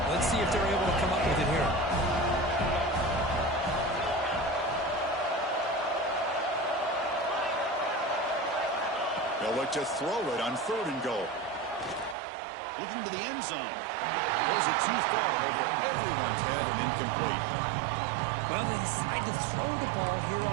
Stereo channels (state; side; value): drops out; left; at 12.2 s